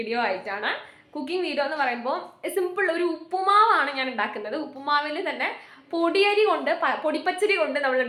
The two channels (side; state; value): both; identical; correlation 1.00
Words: ആയിട്ടാണ്. കുക്കിംഗ് വീഡിയോ എന്ന് പറയുമ്പോൾ സിമ്പിൾ ഒരു ഉപ്പുമാവാണ് ഞാൻ ഉണ്ടാക്കുന്നത്. ഉപ്പുമാവിൽ തന്നെ പൊടിയരി കൊണ്ട് പൊടിപ്പച്ചരി കൊണ്ട് നമ്മൾ